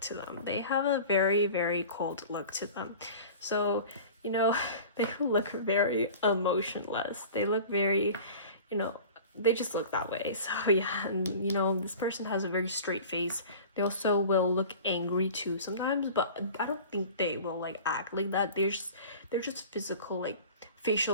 them. They have a very, very cold look to them. So, you know, they look very emotionless. They look very, you know, they just look that way. So yeah, and you know, this person has a very straight face. They also will look angry too sometimes, but I don't think they will like act like that. They're just physical, like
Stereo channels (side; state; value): both; inverted; correlation -0.40